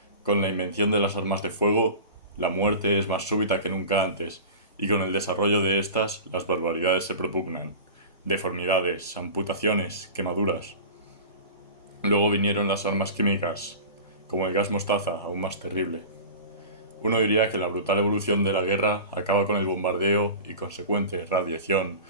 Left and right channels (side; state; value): both; inverted; correlation -0.34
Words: Con la invención de las armas de fuego, la muerte es más súbita que nunca antes, y con el desarrollo de estas, las barbaridades se propugnan. Deformidades, amputaciones, quemaduras. Luego vinieron las armas químicas, como el gas mostaza, aún más terrible. Uno diría que la brutal evolución de la guerra acaba con el bombardeo y consecuente radiación